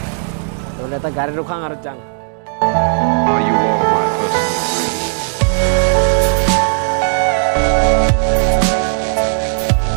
তো এটা গাড়ি ৰখাং আৰু যাং Are you all my personal dreams?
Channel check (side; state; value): left; silent; digital silence